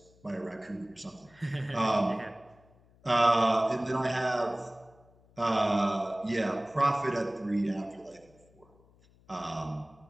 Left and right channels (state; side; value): noise; left; hum, 29 dB below the sound